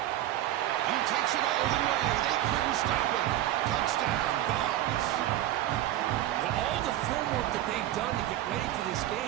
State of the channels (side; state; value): left; quieter; 13.6 dB